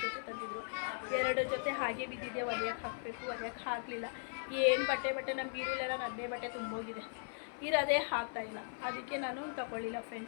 ಜೊತೆ ತಂದಿದ್ರು. 2 ಜೊತೆ ಹಾಗೆ ಬಿದ್ದಿದೆ, ಒಲೆಯಕ್ಕೆ ಹಾಕಬೇಕು, ಒಲೆಯಕ್ಕೆ ಹಾಕಲಿಲ್ಲ. ಏನು ಬಟ್ಟೆ ನಮ್ಮ ಬೀರುಲೆಲ್ಲ ನನ್ನೇ ಬಟ್ಟೆ ತುಂಬೋಗಿದೆ, ಇರೋದೇ ಹಾಕ್ತಾಯಿಲ್ಲ. ಅದಕ್ಕೆ ನಾನು ತಗೊಳ್ಳಿಲ್ಲ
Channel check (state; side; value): silent; right; 52 dB below the other